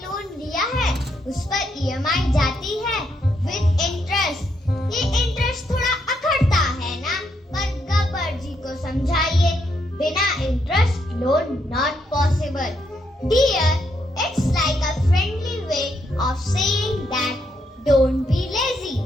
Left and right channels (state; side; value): normal; both; correlation 0.77